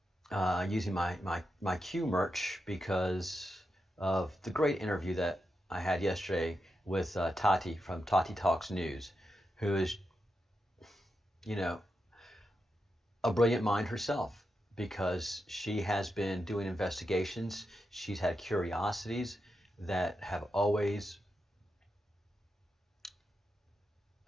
using my Q merch because of the great interview that I had yesterday with Tati from Tati Talks News, who is, a brilliant mind herself, because she has been doing investigations. She's had curiosities that have always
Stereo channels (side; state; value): both; normal; correlation 0.87